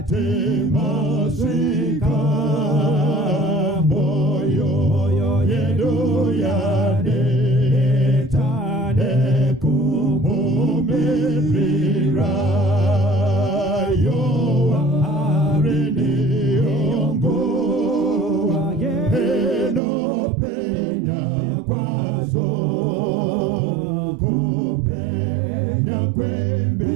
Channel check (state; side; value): drops out; left; at 19.8 s